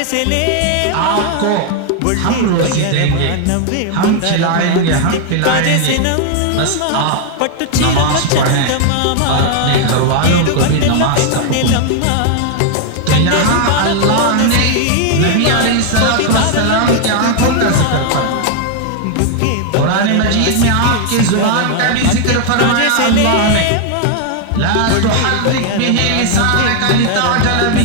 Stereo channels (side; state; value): both; different; correlation 0.00